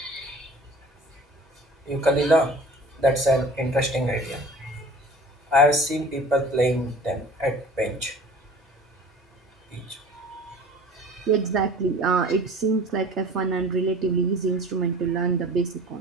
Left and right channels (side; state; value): both; normal; correlation 0.44